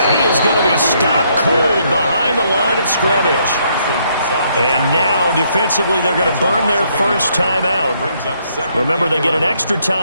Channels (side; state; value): both; inverted; correlation -0.71